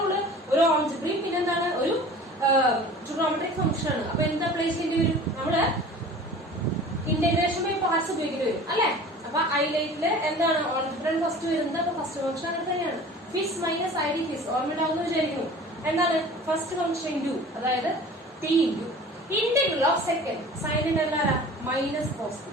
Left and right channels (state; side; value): normal; both; correlation 0.42